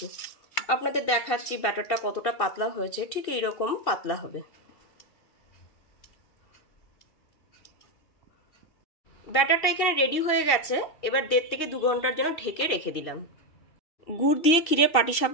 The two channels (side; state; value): right; late; 2.7 ms